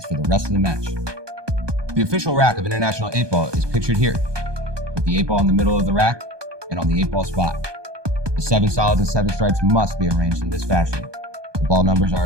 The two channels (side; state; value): left; late; 1.2 ms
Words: for the rest of the match. The official rack of International 8-ball is pictured here, with the 8-ball in the middle of the rack and on the 8-ball spot. The 7 solids and 7 stripes must be arranged in this fashion. The ball numbers